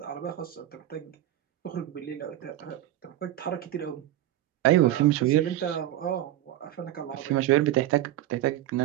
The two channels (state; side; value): quieter; left; 13.5 dB